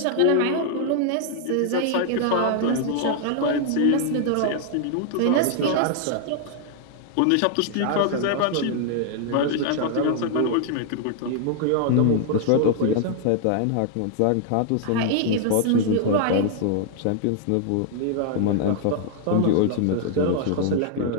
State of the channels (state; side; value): different; both; correlation 0.00